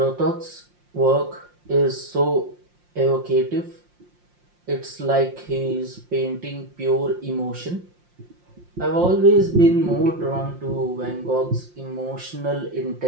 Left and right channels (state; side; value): late; left; 5.7 ms